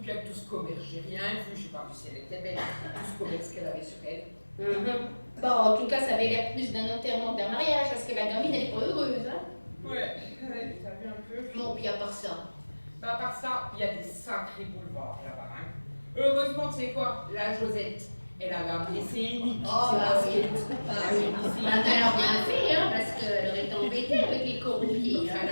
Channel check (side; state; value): both; inverted; correlation -1.00